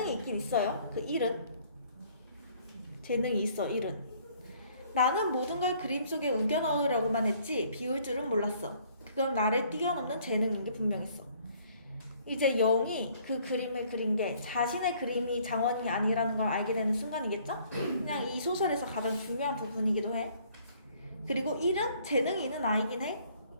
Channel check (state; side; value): inverted; both; correlation -0.60